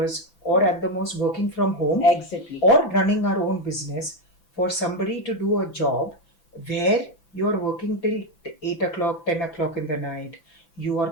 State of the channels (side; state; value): right; late; 6.0 ms